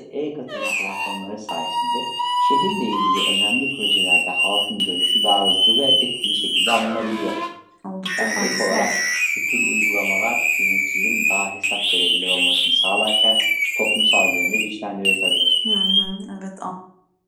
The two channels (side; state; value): both; identical; correlation 1.00